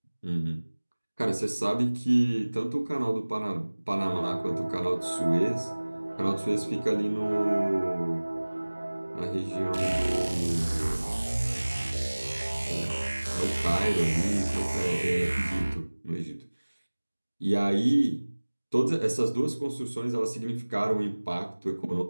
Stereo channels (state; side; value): inverted; both; correlation -1.00